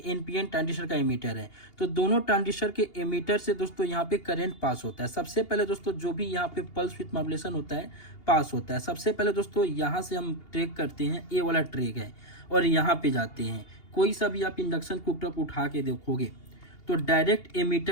NPN ट्रांजिस्टर का एमीटर है, तो दोनों ट्रांजिस्टर के एमीटर से दोस्तों यहाँ पे करंट पास होता है। सबसे पहले दोस्तों जो भी यहाँ पे पल्स विथ मॉड्यूलेशन होता है पास होता है। सबसे पहले दोस्तों यहाँ से हम ट्रैक करते हैं, ये वाला ट्रैक है, और यहाँ पे जाते हैं। कोई सा भी आप इंडक्शन कुकटॉप उठा के देखोगे तो डायरेक्ट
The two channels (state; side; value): late; right; 2.8 ms